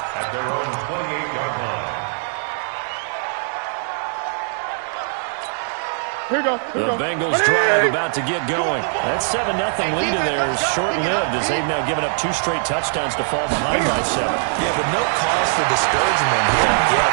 At their own 28-yard line. Here you go. The Bengals drive about to get going. That 7-0 lead in there is short-lived as they've now given up 2 straight touchdowns to fall behind by 7. Yeah, but no cause for discouragement here.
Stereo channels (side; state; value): left; silent; digital silence